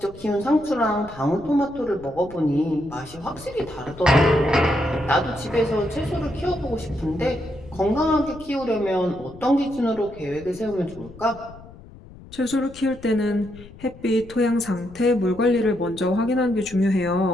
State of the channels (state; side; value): noise; left; rumble, 19 dB below the sound